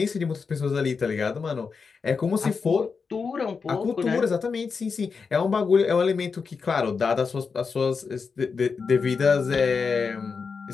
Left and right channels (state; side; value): quieter; right; 5.3 dB